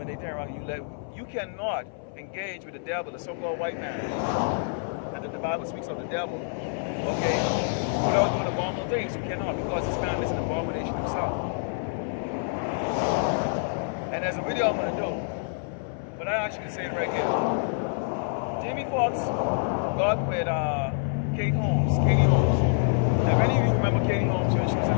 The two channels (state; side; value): silent; right; 57 dB below the other